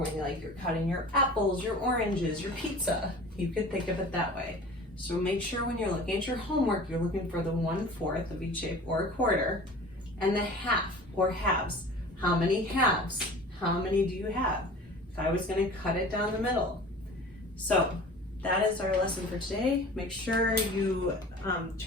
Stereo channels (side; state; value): both; normal; correlation 0.41